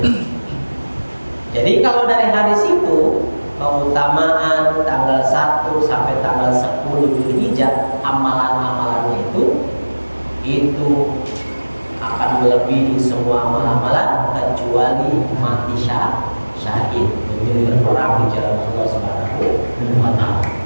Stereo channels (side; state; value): both; inverted; correlation -1.00